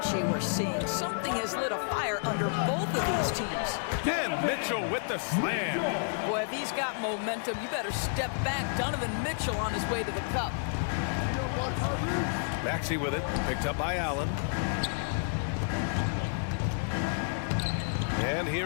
we're seeing. Something has lit a fire under both of these teams. And Mitchell with the slam. Boy, if he's got momentum, you better step back. Donovan Mitchell on his way to the cup. Maxey with it. Picked up by Allen. And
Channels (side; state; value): right; silent; digital silence